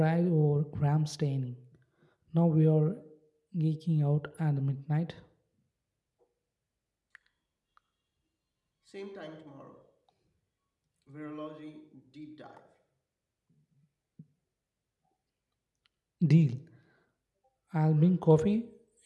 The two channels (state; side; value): identical; both; correlation 1.00